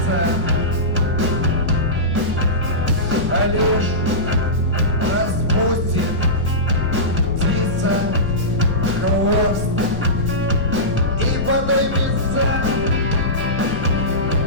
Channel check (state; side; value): noise; left; rumble, 9 dB below the sound